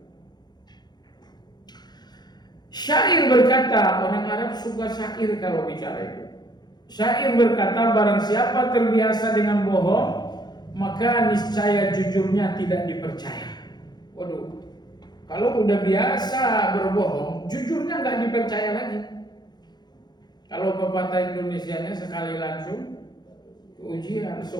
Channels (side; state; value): right; late; 0.20 ms